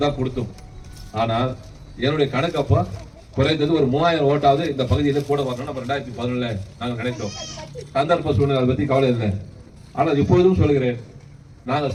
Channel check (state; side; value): identical; both; correlation 1.00